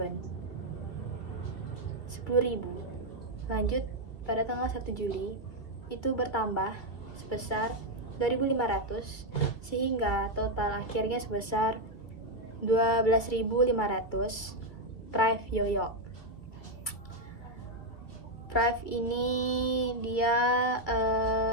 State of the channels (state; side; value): late; right; 2.3 ms